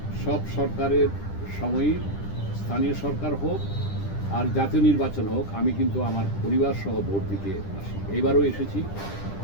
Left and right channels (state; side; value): late; right; 10 ms